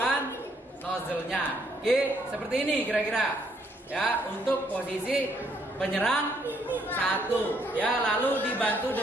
nozzle-nya. Oke, seperti ini kira-kira, ya, untuk posisi penyerang 1, ya, lalu dibantu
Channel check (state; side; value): normal; both; correlation 0.70